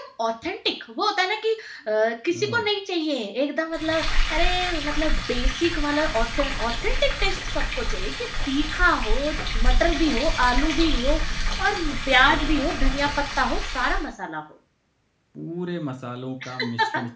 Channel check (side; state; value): both; identical; correlation 1.00